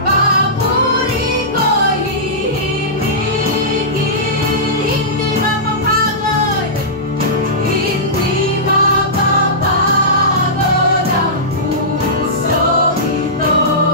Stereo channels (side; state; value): both; normal; correlation -0.17